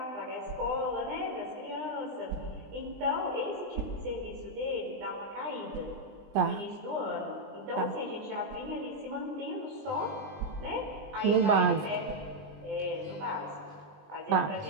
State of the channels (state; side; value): late; left; 20 ms